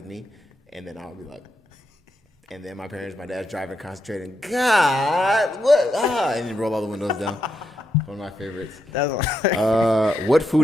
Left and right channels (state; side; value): normal; both; correlation 0.82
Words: me, and then I would be like, and then my dad's driving, concentrating. God, what? And then roll all the windows down. One of my favorites. What